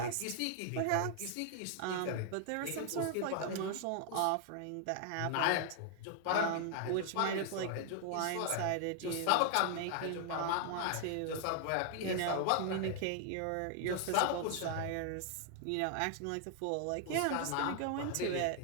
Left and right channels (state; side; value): different; both; correlation 0.00